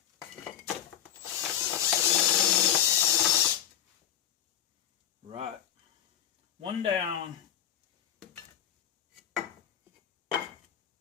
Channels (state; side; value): quieter; right; 10.3 dB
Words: Right. One down.